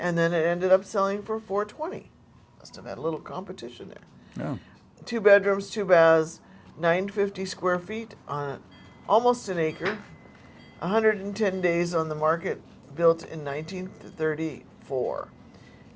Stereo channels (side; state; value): both; identical; correlation 1.00